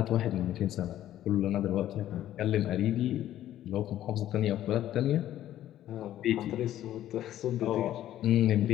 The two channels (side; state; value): right; quieter; 12.6 dB